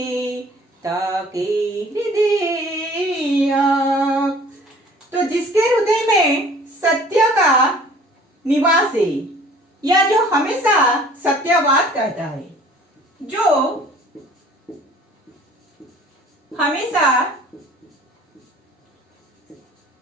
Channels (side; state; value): both; normal; correlation 0.51